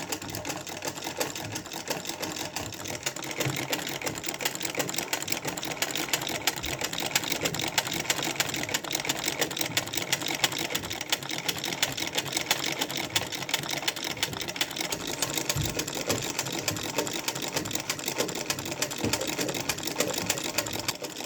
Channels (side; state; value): both; identical; correlation 1.00